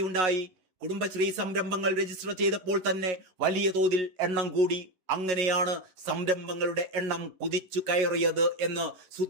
കുടുംബശ്രീ സംരംഭങ്ങൾ രജിസ്റ്റർ ചെയ്തപ്പോൾ തന്നെ വലിയ തോതിൽ എണ്ണം കൂടി. അങ്ങനെയാണ് സംരംഭങ്ങളുടെ എണ്ണം കുതിച്ചു കയറിയത് എന്ന്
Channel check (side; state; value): left; late; 11 ms